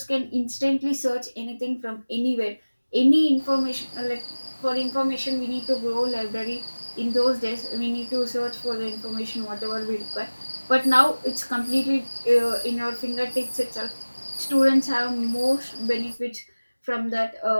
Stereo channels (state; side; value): inverted; both; correlation -1.00